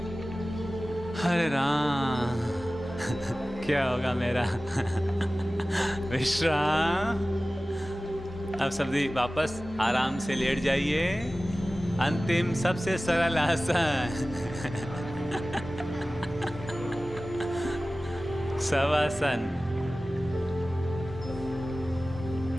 हरे राम। क्या होगा मेरा। विश्राम। अब सभी वापस आराम से लेट जाइए। अंतिम सबसे सरल आसन शवासन।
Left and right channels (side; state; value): both; normal; correlation 0.96